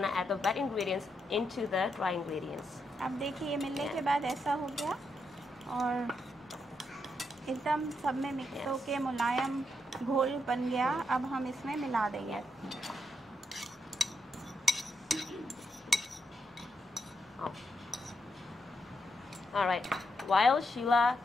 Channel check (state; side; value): normal; both; correlation 0.81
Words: to add the wet ingredients into the dry ingredients. अब देखिए, ये मिलने के बाद ऐसा हो गया और एकदम सब में मिक्स होके मुलायम घोल बन गया। अब हम इसमें मिला देंगे। Oh. All right. While Sheila